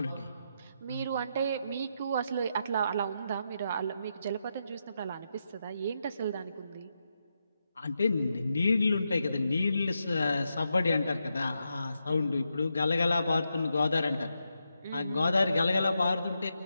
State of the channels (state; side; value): inverted; both; correlation -0.85